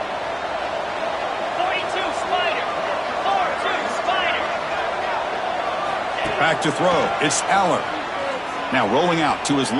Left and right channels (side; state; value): both; identical; correlation 1.00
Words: 42 Spider. 4-2 Spider. Back to throw. It's Aller. Now rolling out to his